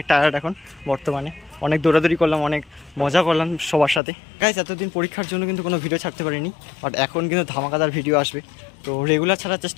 টায়ার্ড এখন বর্তমানে, অনেক দৌড়াদৌড়ি করলাম, অনেক মজা করলাম সবার সাথে। গাইস, এতদিন পরীক্ষার জন্য কিন্তু কোনো ভিডিও ছাড়তে পারিনি, বাট এখন কিন্তু ধামাকাদার ভিডিও আসবে, তো রেগুলার ছাড়ার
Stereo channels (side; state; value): right; drops out; at 4.0 s